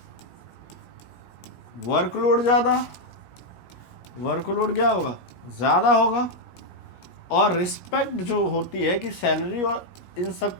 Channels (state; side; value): late; right; 17 ms